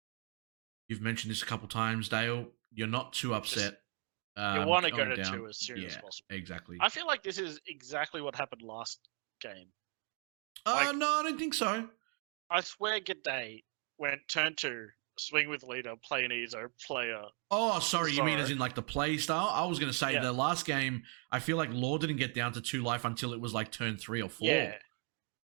you've mentioned this a couple times, Dale. You're not too upset. You want to go to 2 as soon as possible. Exactly. I feel like this is exactly what happened last game. No, I don't think so. I swear G'day went turn 2, swing with leader, play an Izo, player. Oh, sorry, Zoro. You mean as in like the play style? I was going to say the last game, I feel like Law didn't get down to 2 life until it was like turn 3 or 4. Yeah.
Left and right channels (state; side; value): quieter; left; 39.8 dB